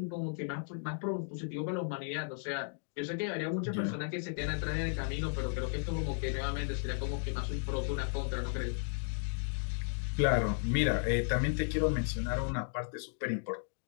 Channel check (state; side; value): silent; right; digital silence